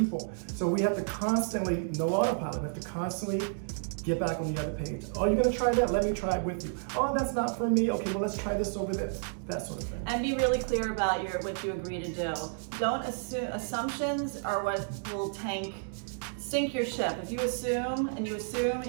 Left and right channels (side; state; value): left; silent; digital silence